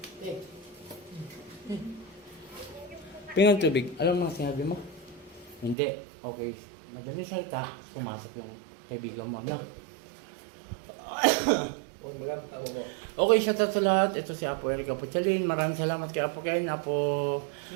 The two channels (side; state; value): left; drops out; at 5.8 s